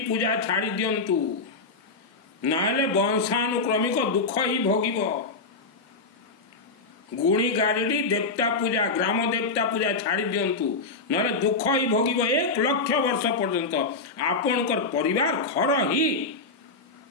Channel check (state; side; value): quieter; right; 3.9 dB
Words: छाड़ी दियंतु, नाले वंशानुक्रमिक दुख ही भोगिब। गुणी गारिडी देवता पूजा, ग्राम देवता पूजा छाड़ी दियंतु, नाले दुख ही भोगिब। 1 लक्ष वर्ष पर्यंत आपणकर परिवार घर ही